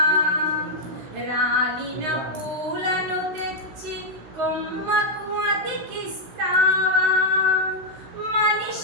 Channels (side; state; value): left; late; 16 ms